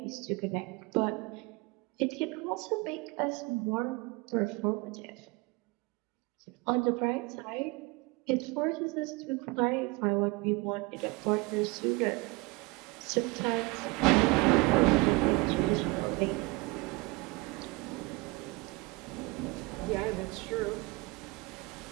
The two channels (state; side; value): quieter; left; 24.3 dB